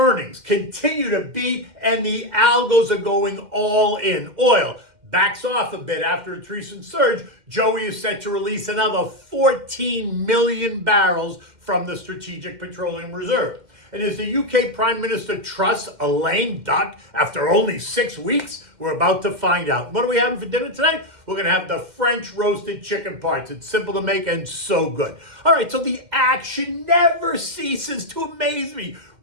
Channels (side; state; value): left; late; 2.1 ms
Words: continue to beat, and the algos are going all in. Oil backs off a bit after its recent surge. Joey is set to release another 14 million barrels from the Strategic Petroleum Reserve. And as the UK Prime Minister trusts a lame duck after only 6 weeks? We're about to find out. What are we having for dinner tonight? We're going to have the French roasted chicken parts. It's simple to make and so good. All right, so the action never ceases to amaze me.